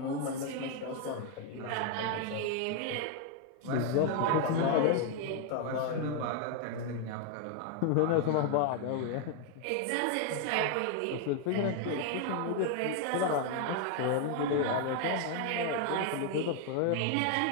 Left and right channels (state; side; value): different; both; correlation 0.00